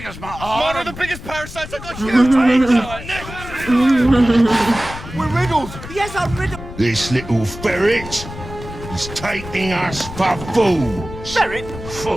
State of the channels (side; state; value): left; noise; rumble, 12 dB below the sound